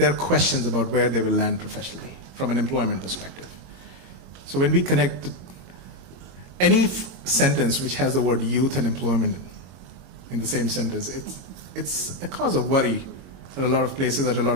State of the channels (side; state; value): left; late; 22 ms